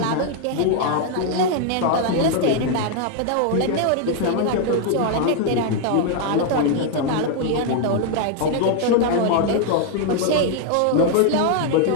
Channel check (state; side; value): different; both; correlation 0.00